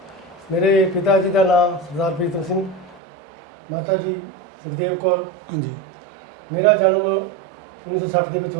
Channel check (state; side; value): drops out; left; at 3.0 s